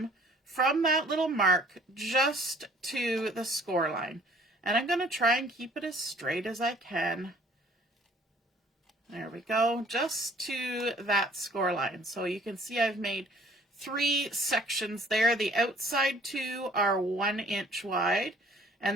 from that little mark just to the score line. And I'm going to try and keep it as straight as I can. There we go, just to that score line. So you can see I've made 3 sections there. The outside 2 are 1 inch wide, and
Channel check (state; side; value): normal; both; correlation 0.56